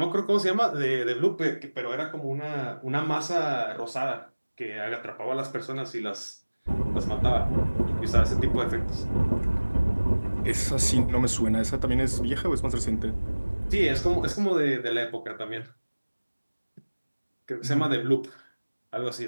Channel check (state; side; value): inverted; both; correlation -1.00